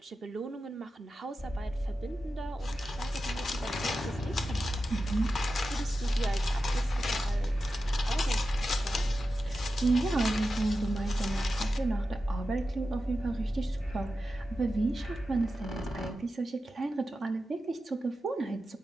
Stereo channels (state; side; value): normal; both; correlation 0.92